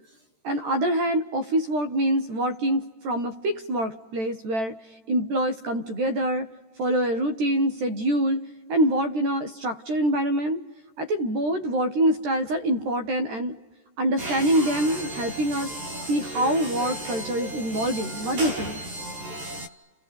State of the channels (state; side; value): late; left; 13 ms